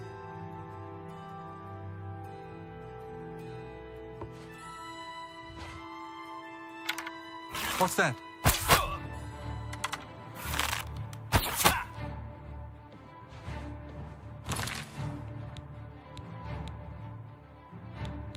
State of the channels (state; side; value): identical; both; correlation 1.00